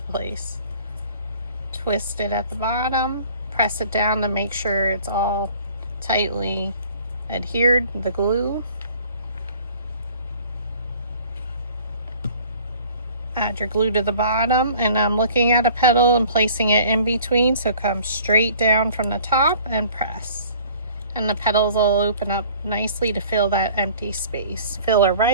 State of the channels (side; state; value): both; inverted; correlation -0.51